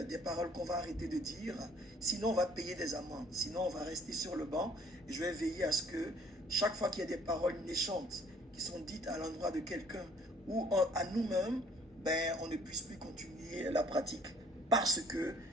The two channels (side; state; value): both; normal; correlation 0.58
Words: des paroles qu'on va arrêter de dire. Sinon, on va payer des amendes. Sinon, on va rester sur le banc. Et je vais veiller à ce que chaque fois qu'il y a des paroles méchantes qui sont dites à l'endroit de quelqu'un ou à nous-mêmes, ben, on ne puisse plus continuer la pratique parce que